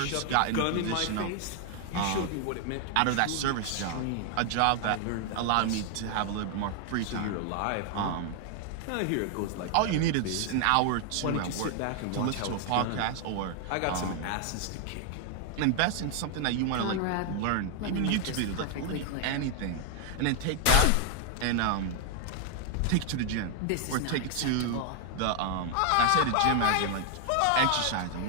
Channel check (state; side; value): different; both; correlation 0.00